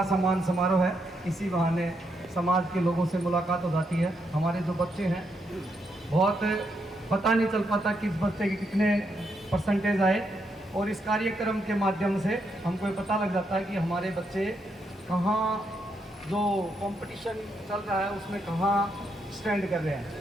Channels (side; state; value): both; normal; correlation 0.79